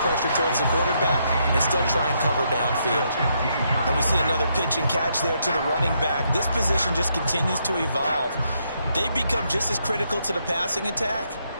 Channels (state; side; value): inverted; both; correlation -0.76